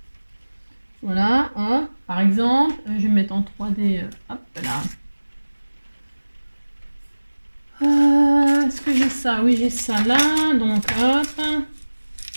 Voilà, hop, par exemple, je vais mettre en 3D, hop là. Est-ce que j'ai ça? Oui j'ai ça là, donc hop.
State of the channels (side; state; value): both; inverted; correlation -1.00